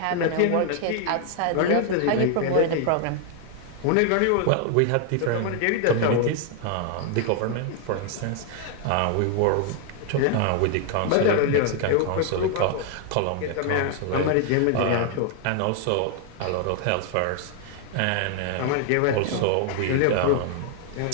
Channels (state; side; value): different; both; correlation 0.00